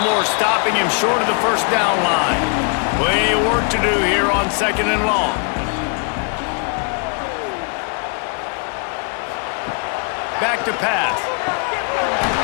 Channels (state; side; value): quieter; right; 39.5 dB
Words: stopping him short of the first down line? Plenty of work to do here on second and long. Back to pass.